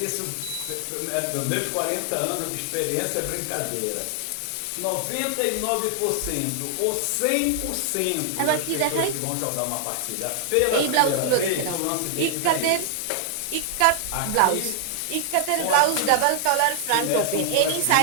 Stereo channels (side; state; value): both; different; correlation 0.00